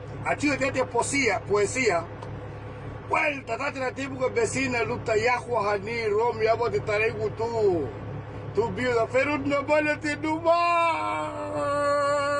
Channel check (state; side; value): identical; both; correlation 1.00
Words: achio tete poesía. Well, tatati na tipo ga vecina luta yahua hani Romeo abo de taregu tu biuda pero no vale te numa.